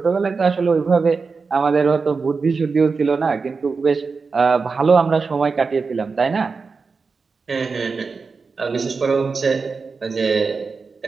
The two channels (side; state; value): left; quieter; 4.7 dB